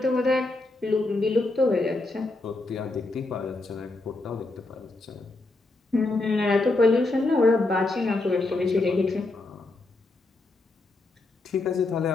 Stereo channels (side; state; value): right; quieter; 3.1 dB